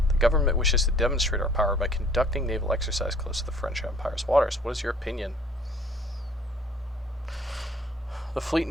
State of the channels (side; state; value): both; normal; correlation 0.55